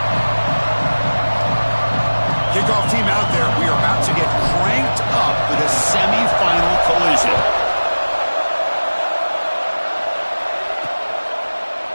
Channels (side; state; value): both; inverted; correlation -1.00